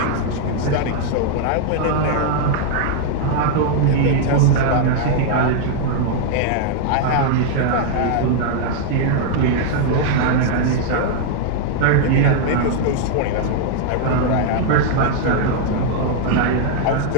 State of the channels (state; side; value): different; both; correlation -0.01